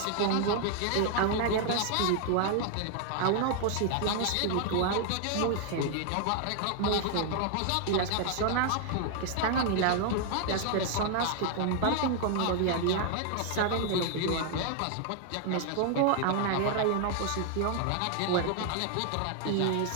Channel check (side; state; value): both; different; correlation 0.00